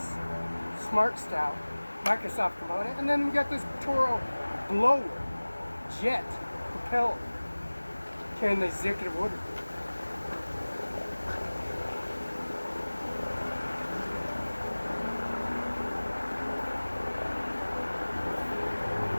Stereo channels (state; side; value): inverted; both; correlation -1.00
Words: Smart Style Microsoft component, and then we got this Toro blower jet propelled carrying the executive order.